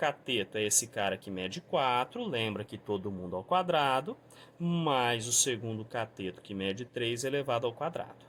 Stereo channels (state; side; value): identical; both; correlation 1.00